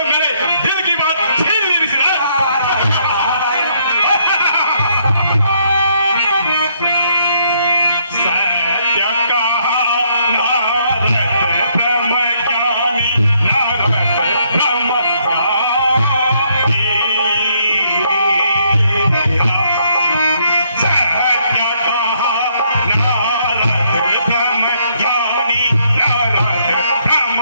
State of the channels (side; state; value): both; inverted; correlation -0.70